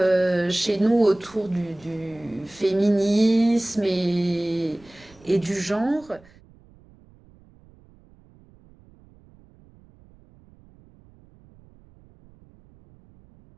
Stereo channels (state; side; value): noise; right; rumble, 27 dB below the sound